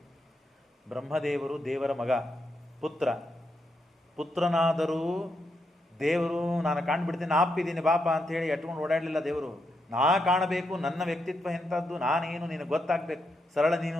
ಬ್ರಹ್ಮದೇವರು ದೇವರ ಮಗ, ಪುತ್ರನಾದರೂ ದೇವರು ನಾನು ಕಾಣ್ಬಿಡ್ತೀನಿ, ಆಪಿದ್ದೀನಿ ಬಾಪ ಅಂತ ಹೇಳಿ ಎಟ್ಕೊಂಡು ಓಡಾಡಲಿಲ್ಲ ದೇವರು. ನಾ ಕಾಣಬೇಕು, ನನ್ನ ವ್ಯಕ್ತಿತ್ವ ಎಂಥದ್ದು, ನಾನೇನು ನಿನಗೆ ಗೊತ್ತಾಗಬೇಕು. ಸರಳ ನೀನು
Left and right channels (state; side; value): normal; both; correlation 0.82